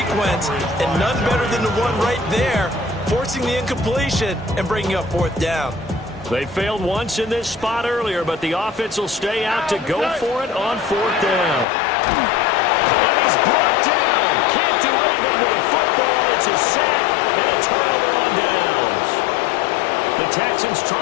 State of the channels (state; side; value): drops out; right; at 11.7 s